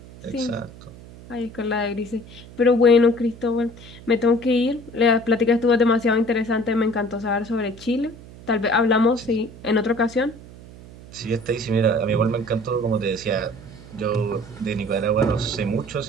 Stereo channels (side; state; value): right; noise; hum, 18 dB below the sound